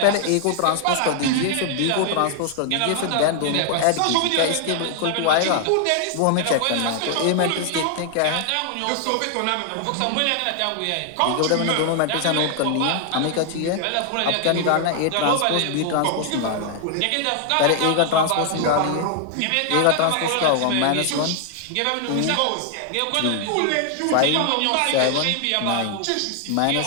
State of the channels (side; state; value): both; different; correlation 0.00